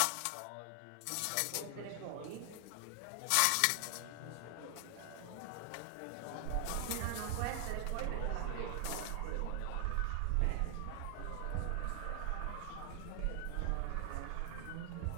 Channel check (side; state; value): both; different; correlation 0.00